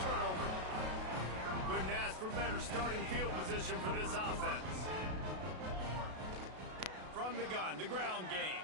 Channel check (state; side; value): late; left; 32 ms